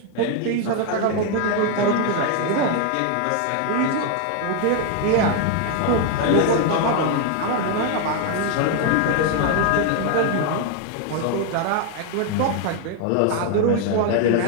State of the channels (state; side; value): different; both; correlation 0.01